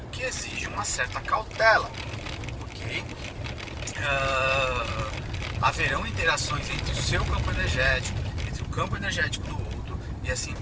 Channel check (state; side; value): identical; both; correlation 1.00